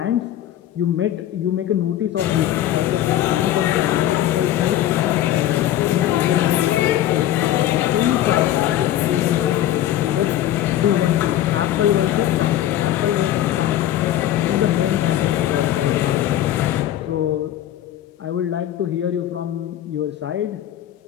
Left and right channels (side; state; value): right; quieter; 12.5 dB